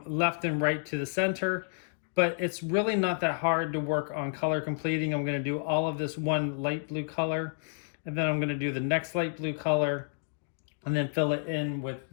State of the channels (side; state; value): right; silent; digital silence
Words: left and right to the center, but it's really not that hard to work on color completing. I'm going to do all of this one light blue color, and then I'm going to do the next light blue color, and then fill it in with